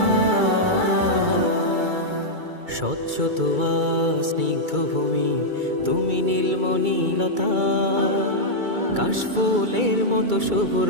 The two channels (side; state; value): left; late; 2.3 ms